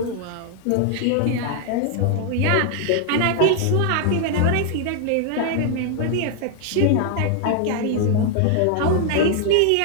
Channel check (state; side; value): different; both; correlation 0.00